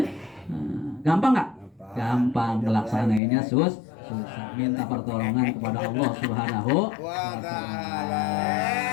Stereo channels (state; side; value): drops out; right; at 3.2 s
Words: Gampang enggak? Gampang, melaksanainnya susah. Minta pertolongan kepada Allah Subhanahu wa taala.